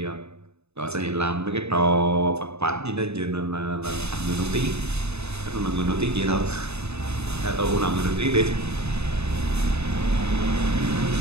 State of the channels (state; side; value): late; left; 0.80 ms